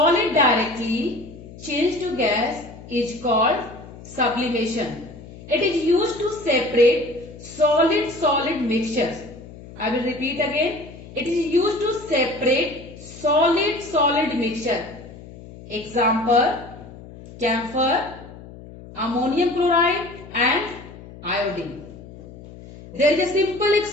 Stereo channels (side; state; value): left; noise; hum, 17 dB below the sound